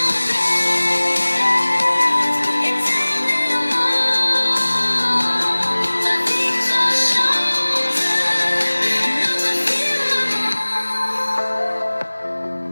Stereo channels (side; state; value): both; inverted; correlation -1.00